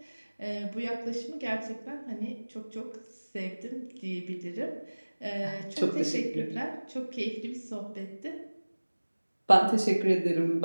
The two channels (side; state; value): both; inverted; correlation -1.00